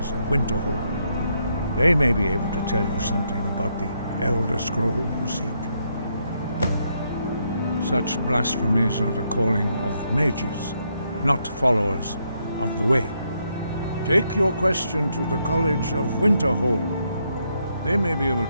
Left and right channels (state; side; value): inverted; both; correlation -0.77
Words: of Winterhold. They may be able to tell you something about the Elder Scroll you seek. Such blasphemies are the calling of mages, not followers of the Way. Take your question to the College of Winterhold. They may be able